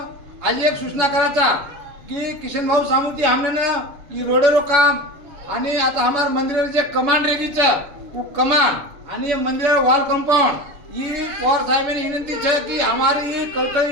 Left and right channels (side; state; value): left; late; 7.0 ms